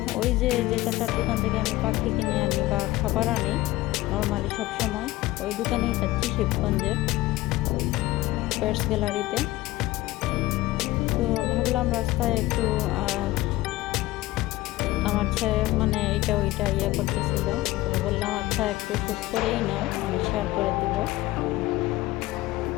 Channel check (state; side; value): quieter; right; 17.8 dB